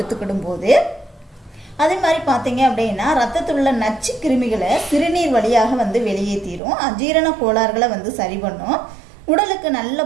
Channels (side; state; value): left; drops out; at 6.6 s